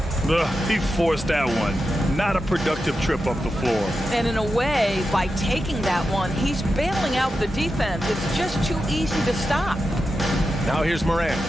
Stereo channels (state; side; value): normal; both; correlation 0.90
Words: He forced that one. Not a productive trip up the floor. And in a way, by taking that one, he's bailing out the defense. It's just too easy to stop. Now here's Morant.